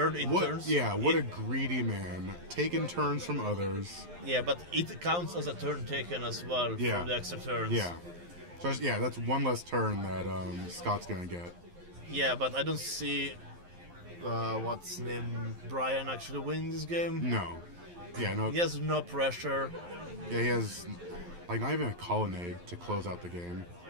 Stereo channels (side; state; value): left; late; 11 ms